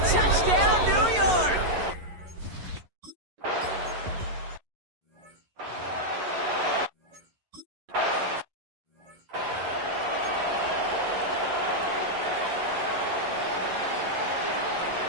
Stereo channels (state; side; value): late; left; 11 ms